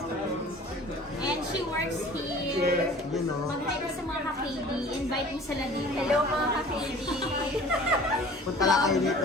And she works here. You know. Mag-hi ka sa mga ka-KD. Invite mo sila dito. Hello mga ka-KD. Punta lang kayo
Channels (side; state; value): both; normal; correlation 0.46